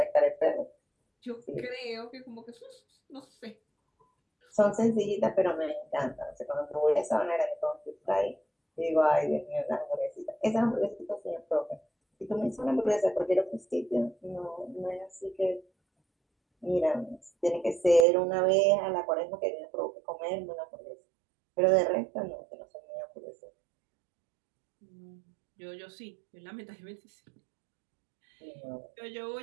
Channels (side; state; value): left; drops out; at 18.1 s